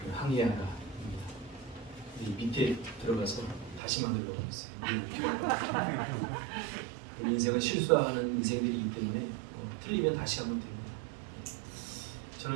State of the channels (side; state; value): left; drops out; at 3.8 s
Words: 항해하라. 밑에 들어가서 다시 만들려고 했어요. 우리 인생은 실수하는 인생들이기 때문에 틀리면 다시 하면 됩니다.